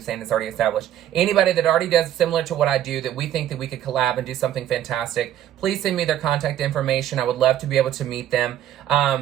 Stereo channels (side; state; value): left; quieter; 11.4 dB